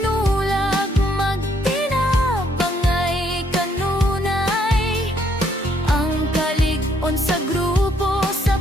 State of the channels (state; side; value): normal; both; correlation 0.70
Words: magtinabangay kanunay, ang kalig-on sa grupo sa